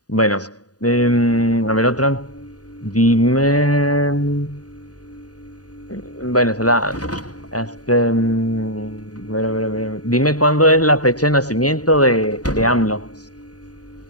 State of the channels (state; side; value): late; right; 0.68 ms